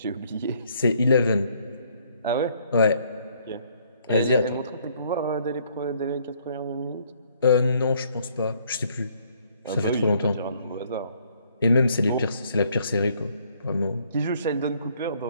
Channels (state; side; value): inverted; both; correlation -0.65